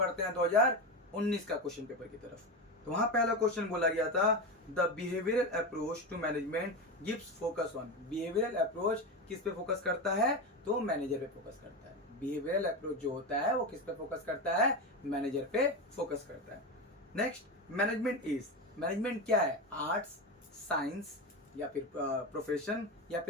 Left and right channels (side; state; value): both; normal; correlation 0.18